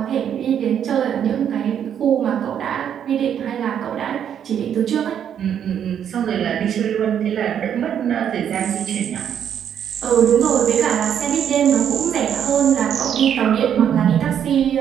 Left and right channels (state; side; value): quieter; left; 9.0 dB